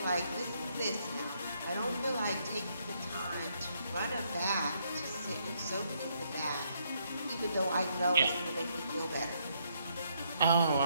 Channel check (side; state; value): both; inverted; correlation -0.73